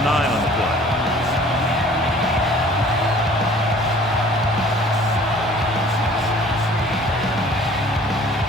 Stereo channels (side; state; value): both; normal; correlation 0.51